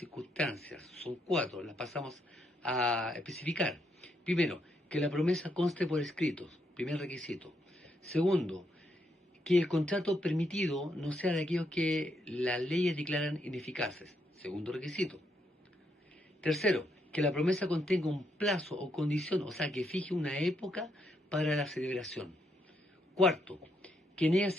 Son 4, las pasamos a especificar. Primero, que la promesa conste por escritos, primer requisito. Segundo, que el contrato permitido no sea de aquellos que las leyes declaran ineficaces, segundo requisito. Tercero, que la promesa contenga un plazo o condición, o sea, que fije una época para la celebración. Cuarto, que en ella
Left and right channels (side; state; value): both; normal; correlation 0.77